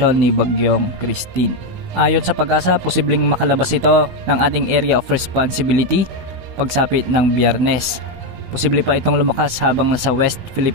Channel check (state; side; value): late; left; 16 ms